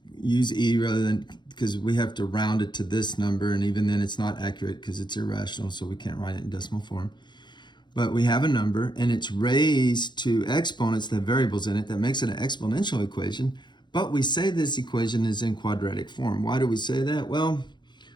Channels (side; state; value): right; late; 0.22 ms